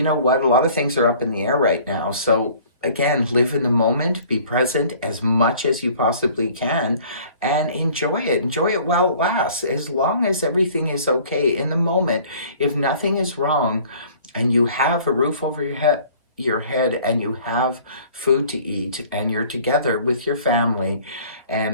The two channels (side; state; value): both; inverted; correlation -0.51